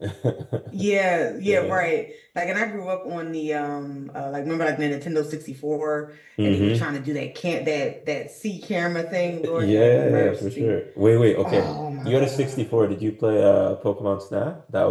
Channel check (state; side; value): identical; both; correlation 1.00